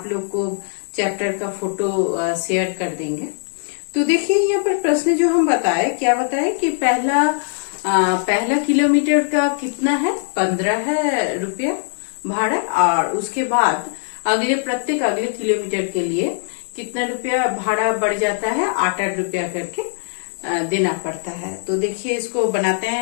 लोग को चैप्टर का फोटो शेयर कर देंगे। तो देखिए यहाँ पर प्रश्न जो हम बताए, क्या बताए कि पहला किलोमीटर का कितना है, 15 है रुपया भाड़ा, और उसके बाद प्रत्येक अगले किलोमीटर के लिए कितना रुपया भाड़ा बढ़ जाता है, 8 रुपया करके देना पड़ता है। तो देखिए इसको बनाते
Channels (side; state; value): right; silent; digital silence